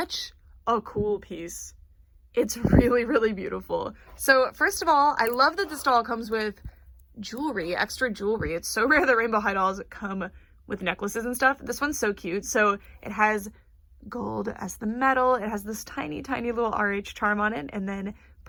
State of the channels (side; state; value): both; identical; correlation 1.00